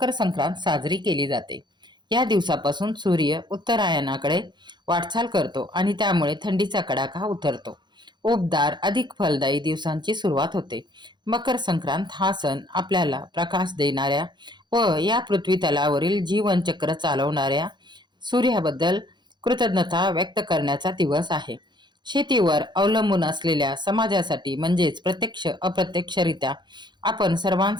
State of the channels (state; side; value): late; left; 0.22 ms